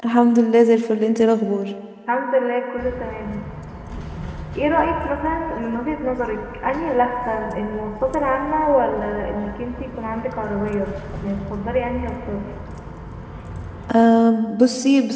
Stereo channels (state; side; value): identical; both; correlation 1.00